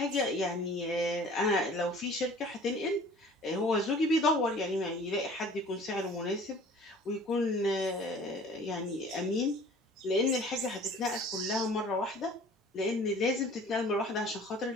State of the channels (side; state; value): both; normal; correlation 0.48